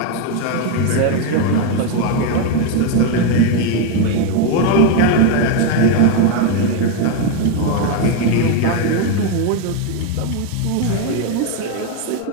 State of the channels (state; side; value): different; both; correlation 0.02